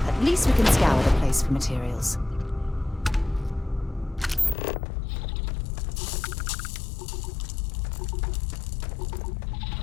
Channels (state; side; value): drops out; right; at 4.5 s